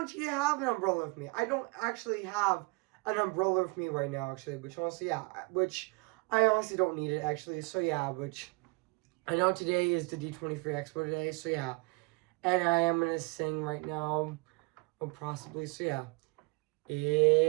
actually have an umbrella with me. I don't actually have an umbrella with me right now, actually. Which I honestly don't need it, actually. So yeah, which I know today is the D23 Expo today. So yeah, and I am gonna sing right now, or possibly. So yeah.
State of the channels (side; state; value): left; quieter; 27.9 dB